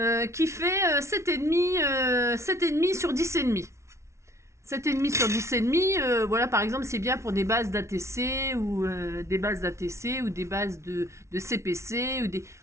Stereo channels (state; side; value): late; left; 0.13 ms